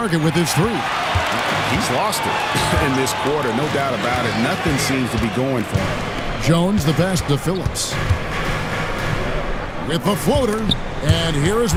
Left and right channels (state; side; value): identical; both; correlation 1.00